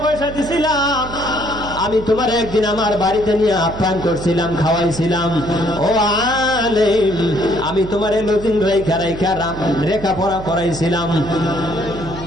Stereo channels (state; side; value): noise; right; hum, 12 dB below the sound